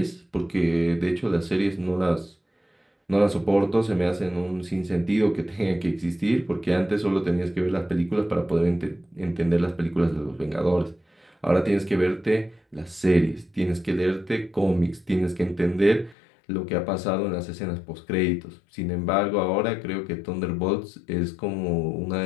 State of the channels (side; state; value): right; drops out; at 16.2 s